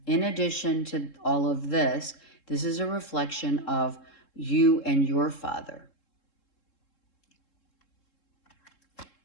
in addition to all of this, this is a reflection of you and your father.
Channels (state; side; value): late; right; 3.7 ms